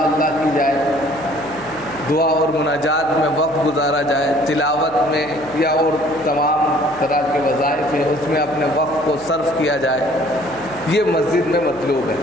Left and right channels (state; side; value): noise; right; hum, 22 dB below the sound